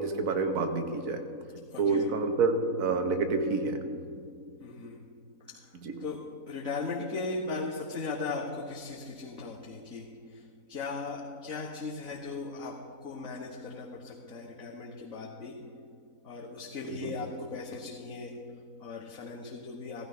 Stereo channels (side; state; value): left; late; 4.0 ms